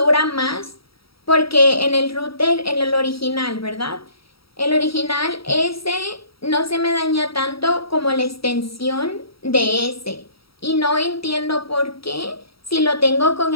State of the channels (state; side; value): late; right; 0.75 ms